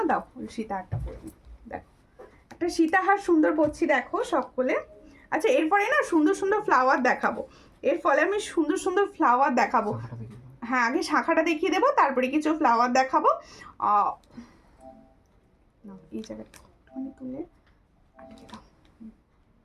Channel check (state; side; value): identical; both; correlation 1.00